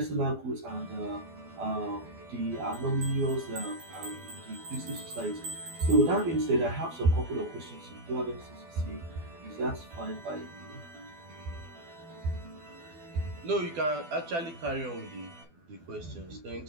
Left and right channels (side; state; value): left; late; 12 ms